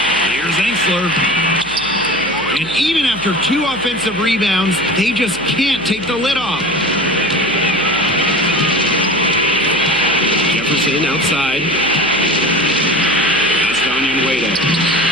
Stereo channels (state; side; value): noise; right; hum, 21 dB below the sound